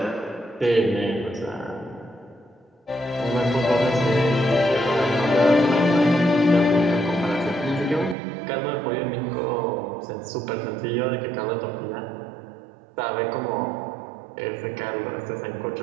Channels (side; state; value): left; drops out; at 8.2 s